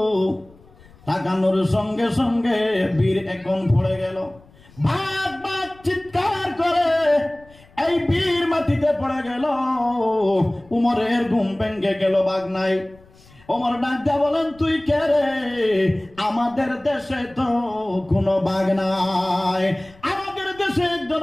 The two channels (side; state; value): left; noise; rumble, 26 dB below the sound